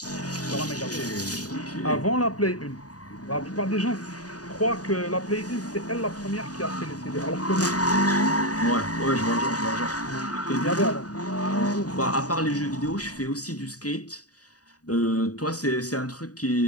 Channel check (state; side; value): late; right; 0.68 ms